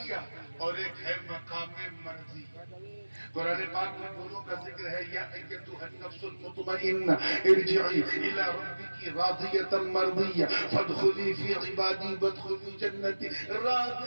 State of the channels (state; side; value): inverted; both; correlation -1.00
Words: اور ایک ہے مقام مرضی. قرآن پاک میں دونوں کا ذکر ہے. یا ایتھا النفس المطمئنہ ارجعی الی ربک راضیۃ مرضیہ فادخلی فی عبادی وادخلی جنتی